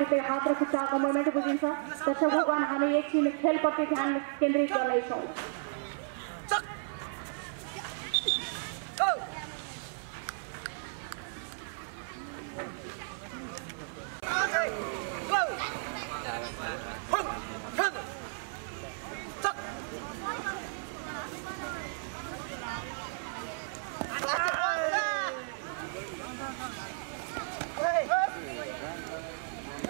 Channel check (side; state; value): left; silent; 55 dB below the other